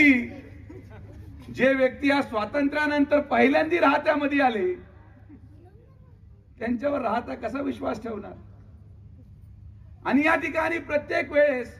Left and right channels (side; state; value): both; identical; correlation 1.00